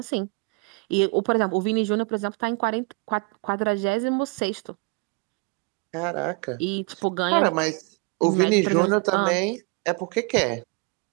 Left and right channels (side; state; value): left; quieter; 30.9 dB